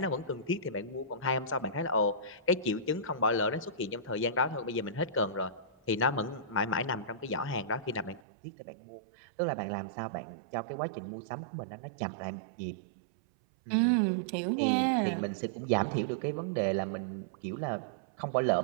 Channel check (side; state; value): left; drops out; at 8.2 s